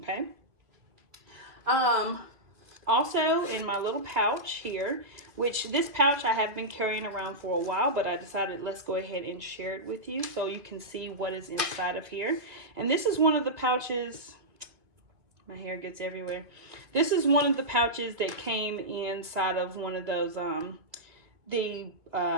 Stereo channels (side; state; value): left; late; 2.7 ms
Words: Also in my little pouch here, which this pouch I have been carrying around for a while, but I decided let's go ahead and share it with you so you can see what is inside of here. And this is one of the pouches, my hair gets everywhere. This is one of the pouches that came inside of one of those, the